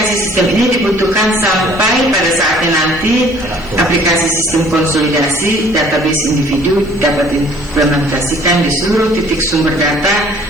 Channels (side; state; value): right; noise; hiss, 29 dB below the sound